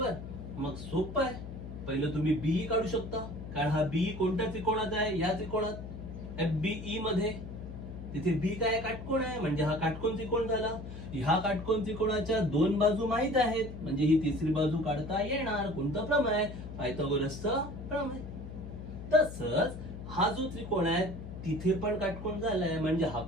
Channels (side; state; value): left; noise; hum, 10 dB below the sound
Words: मग सोपं आहे. पहिलं तुम्ही BE काढू शकता, कारण हा BE कोणत्या त्रिकोणात आहे? या त्रिकोणात FBE मध्ये. तिथे B काय काटकोण आहे, म्हणजे हा काटकोण त्रिकोण झाला. ह्या काटकोण त्रिकोणाच्या दोन बाजू माहित आहेत, म्हणजे ही तिसरी बाजू काढता येणार. कोणतं प्रमेय? पायथागोरसचं प्रमेय. तसंच हा जो त्रिकोण आहे तिथे पण काटकोण झालाय, म्हणजे हा